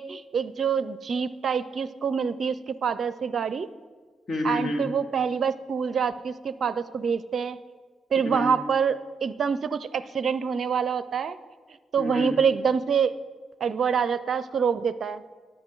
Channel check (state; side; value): quieter; left; 5.7 dB